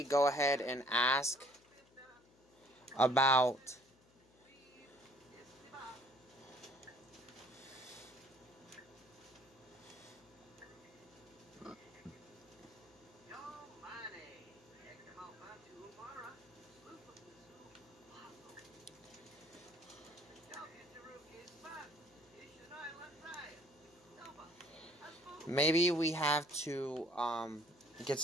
go ahead and ask about maybe we have to get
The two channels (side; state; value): left; noise; hum, 28 dB below the sound